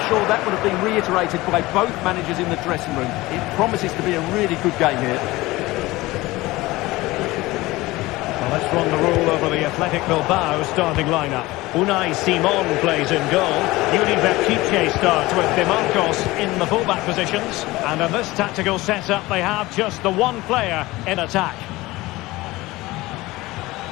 sure that would have been reiterated by both managers in the dressing room. It promises to be a really good game here. Well, let's run the rule over the Athletic Bilbao starting lineup. Unai Simon plays in goal. Yuri Berchiche starts with De Marcos in the fullback positions. And in this tactical setup, they have just the one player in attack.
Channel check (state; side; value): quieter; right; 19.7 dB